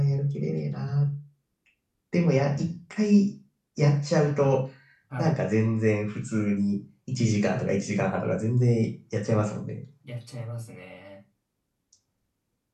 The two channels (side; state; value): both; identical; correlation 1.00